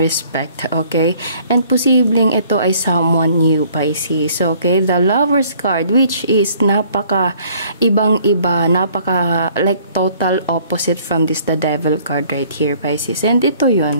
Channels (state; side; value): inverted; both; correlation -0.58